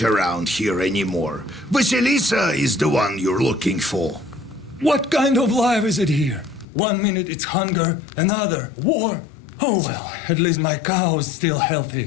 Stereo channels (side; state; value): right; drops out; at 6.7 s